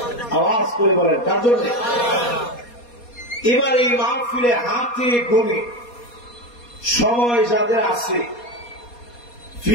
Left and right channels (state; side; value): late; right; 4.2 ms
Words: আওয়াজ করে বলেন, কার জন্য? এবার এই মাহফিলে হাতে গুনে সময় যাদের আছে,